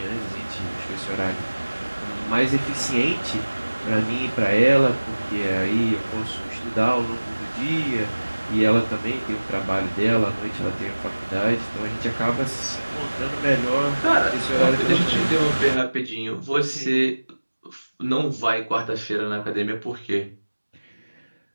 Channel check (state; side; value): inverted; both; correlation -1.00